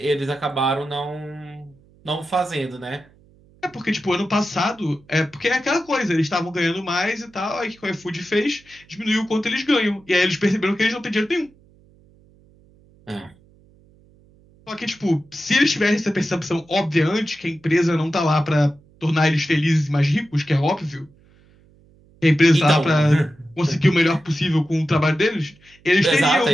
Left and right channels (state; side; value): noise; right; hum, 29 dB below the sound